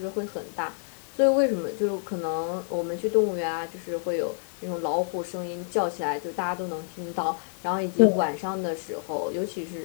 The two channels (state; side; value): silent; right; digital silence